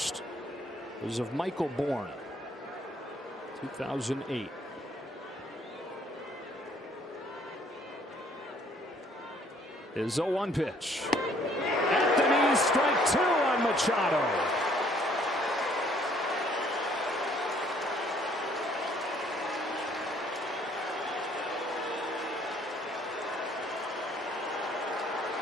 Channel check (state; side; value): normal; both; correlation 0.62